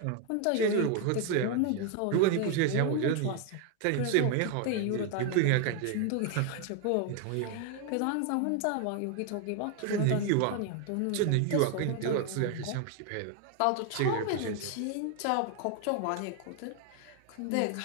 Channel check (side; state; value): both; different; correlation 0.01